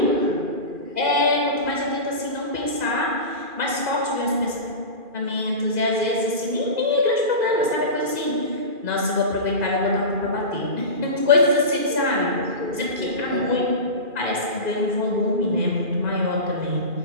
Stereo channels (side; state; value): left; late; 2.4 ms